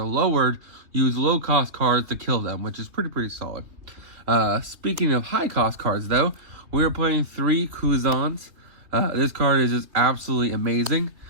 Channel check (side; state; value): left; late; 3.5 ms